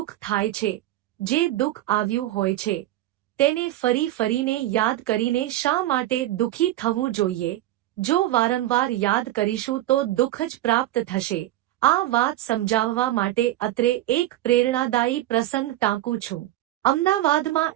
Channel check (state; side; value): quieter; left; 14.9 dB